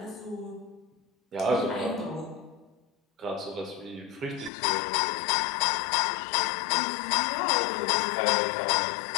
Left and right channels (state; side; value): drops out; right; at 4.5 s